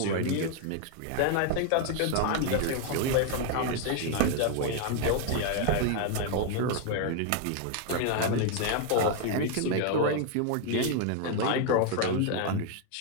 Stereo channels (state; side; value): different; both; correlation 0.00